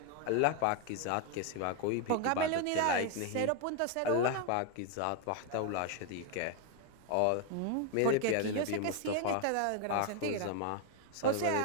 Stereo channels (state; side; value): different; both; correlation 0.01